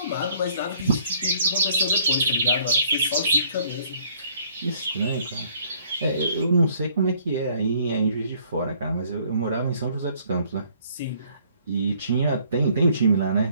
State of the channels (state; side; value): inverted; both; correlation -0.62